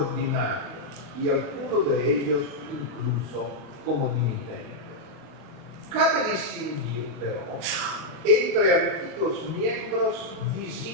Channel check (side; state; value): left; late; 35 ms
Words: y algunos de ellos incluso como dimitentes. Cabe distinguir, pero, entre antiguos miembros